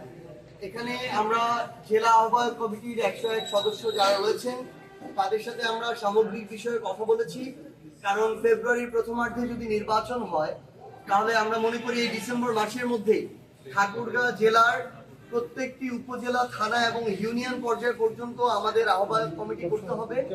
এখানে আমরা জেলা আহ্বায়ক কমিটির 101 সদস্য যারা রয়েছেন তাদের সাথে আমরা সামগ্রিক বিষয়ে কথা বলেছি। কারণ ফেব্রুয়ারির প্রথমার্ধে যদি নির্বাচন হয় তাহলে আমরা মনে করি এই ডিসেম্বর মাসের মধ্যেই ঠাকুরগাঁও জেলার প্রত্যেকটি উপজেলা, থানা এবং ইউনিয়ন পর্যায় পর্যন্ত আমাদের আহ্বায়ক কমিটি করতে হবে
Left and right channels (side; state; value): both; identical; correlation 1.00